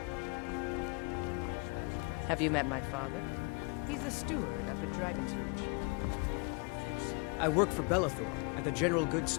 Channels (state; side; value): quieter; right; 31.7 dB